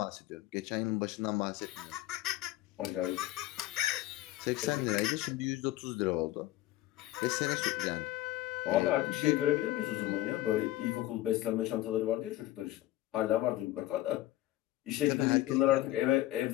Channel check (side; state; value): right; quieter; 15.5 dB